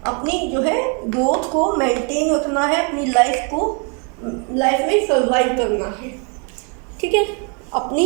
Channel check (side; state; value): left; quieter; 37.1 dB